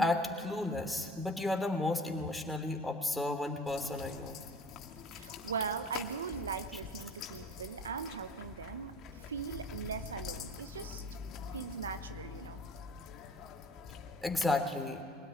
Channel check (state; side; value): normal; both; correlation 0.44